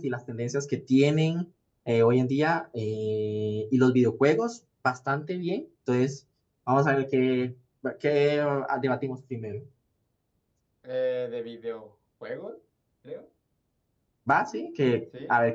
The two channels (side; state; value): both; identical; correlation 1.00